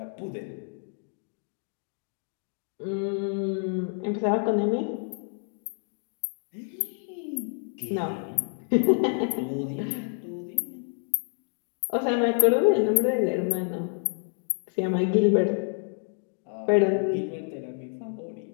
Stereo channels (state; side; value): silent; right; 56 dB below the other